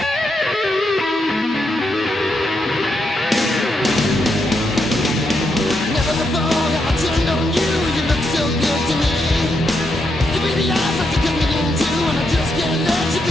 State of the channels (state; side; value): normal; both; correlation 0.81